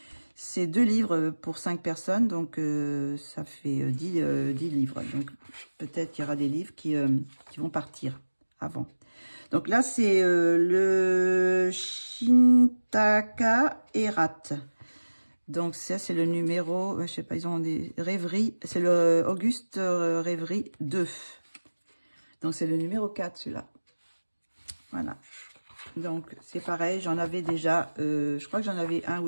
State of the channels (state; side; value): inverted; both; correlation -1.00